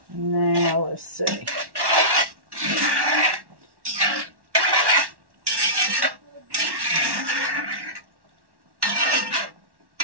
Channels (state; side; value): late; left; 1.1 ms